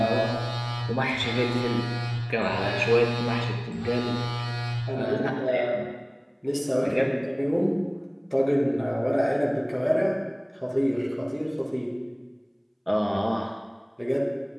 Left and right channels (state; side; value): identical; both; correlation 1.00